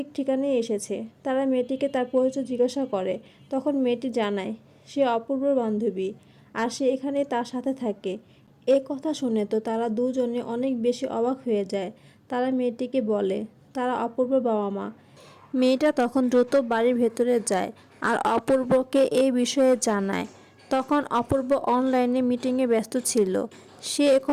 ঠিকানায় এসেছে। তারা মেয়েটিকে তার পরিচয় জিজ্ঞাসা করে। তখন মেয়েটি জানায় সে অপূর্বর বান্ধবী আর সে এখানে তার সাথে থাকে। এ কথা শুনে তো তারা দুজনে অনেক বেশি অবাক হয়ে যায়। তারা মেয়েটিকে বলে তারা অপূর্বর বাবা মা। মেয়েটা তখন দ্রুত বাড়ির ভেতরে যায় আর অপূর্বকে এই বিষয়ে জানায়। তখন অপূর্ব অনলাইনে মিটিংয়ে ব্যস্ত ছিল। সে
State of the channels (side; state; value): both; identical; correlation 1.00